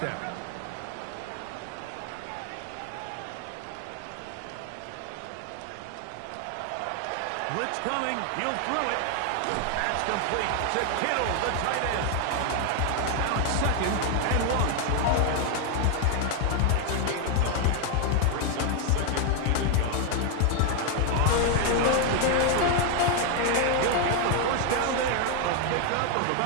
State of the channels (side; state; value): both; different; correlation 0.01